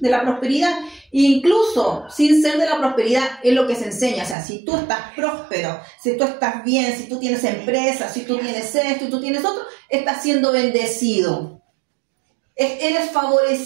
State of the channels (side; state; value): left; drops out; at 4.4 s